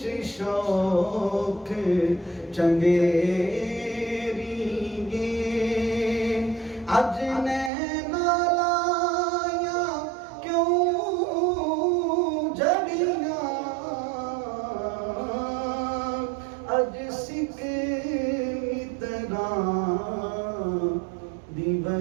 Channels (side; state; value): left; drops out; at 7.7 s